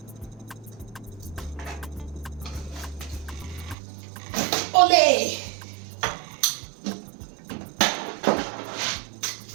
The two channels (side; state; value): left; drops out; at 3.8 s